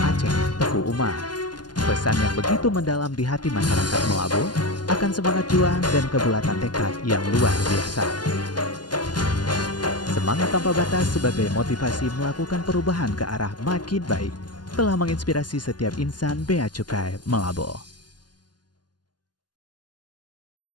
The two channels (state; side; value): late; right; 0.70 ms